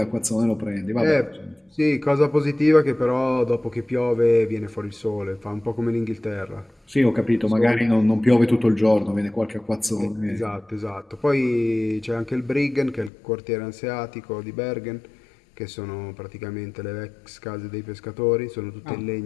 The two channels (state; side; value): drops out; right; at 13.1 s